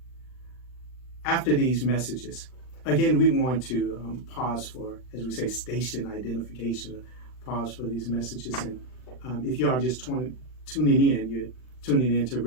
After these messages, again, we want to pause for, as we say, station identification, pause for these messages. And if you are just tuning in, you're tuning in to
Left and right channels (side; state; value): right; late; 39 ms